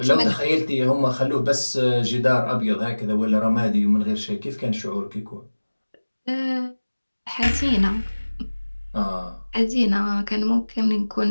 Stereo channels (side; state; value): both; inverted; correlation -1.00